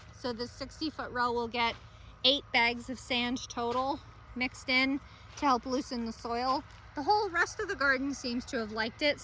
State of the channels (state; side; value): identical; both; correlation 1.00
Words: So this 60-foot row will get 8 bags of sand total mixed in to help loosen the soil. The whole rest of the garden seems to have liked it,